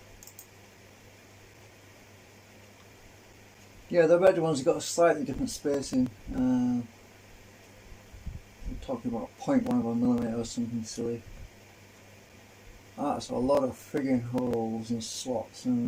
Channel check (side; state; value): both; identical; correlation 1.00